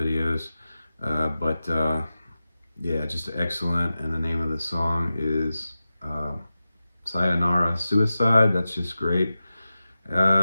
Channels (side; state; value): both; inverted; correlation -0.94